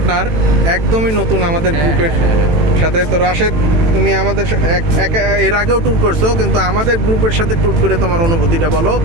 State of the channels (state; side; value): late; left; 18 ms